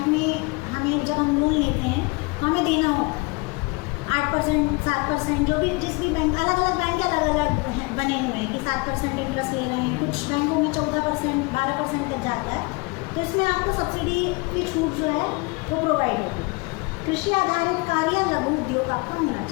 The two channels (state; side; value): quieter; right; 27.8 dB